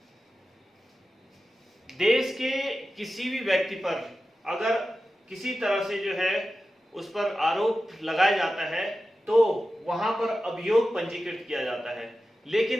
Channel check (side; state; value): both; normal; correlation 0.93